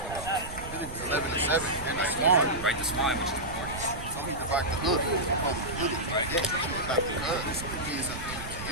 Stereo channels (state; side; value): noise; right; rumble, 11 dB below the sound